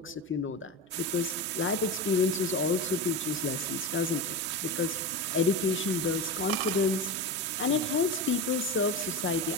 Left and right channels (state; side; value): normal; both; correlation 0.22